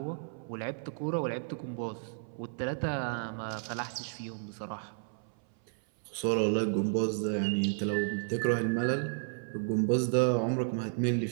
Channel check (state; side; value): silent; left; 56 dB below the other